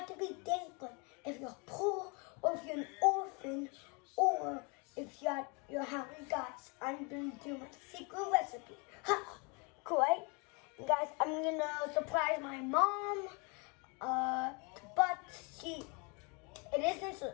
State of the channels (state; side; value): quieter; right; 32.2 dB